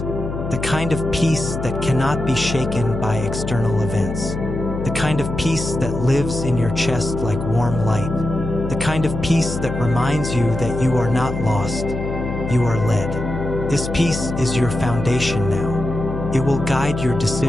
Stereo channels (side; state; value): left; noise; hum, 5 dB below the sound